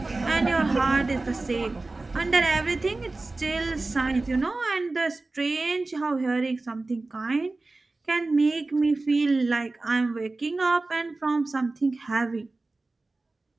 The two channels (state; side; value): quieter; left; 3.3 dB